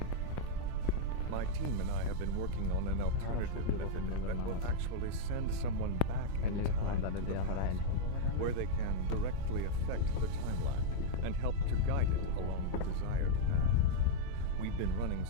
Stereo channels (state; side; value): different; both; correlation -0.01